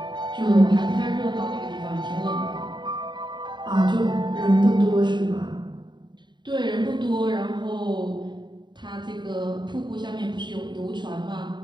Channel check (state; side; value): late; left; 0.22 ms